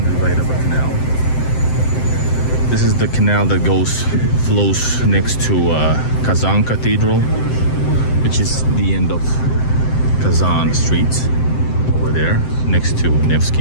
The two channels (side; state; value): right; late; 7.8 ms